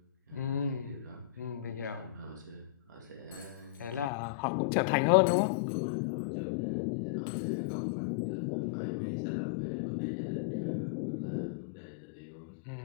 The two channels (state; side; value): drops out; right; at 4.1 s